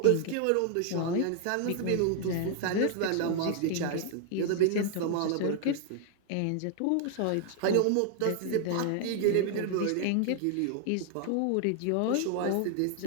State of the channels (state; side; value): different; both; correlation 0.00